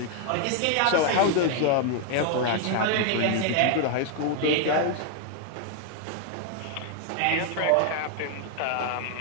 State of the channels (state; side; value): different; both; correlation 0.00